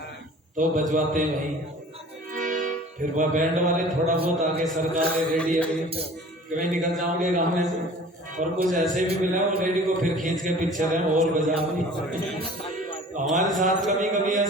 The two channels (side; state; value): both; normal; correlation 0.45